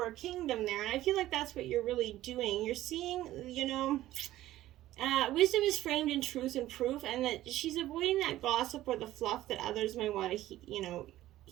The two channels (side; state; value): left; quieter; 14.8 dB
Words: a kingdom there, and I feel like that's what you're really doing. You're seeing, wisdom is framed in truth and proof, and that she's avoiding that gossip or the fluff that others may want to,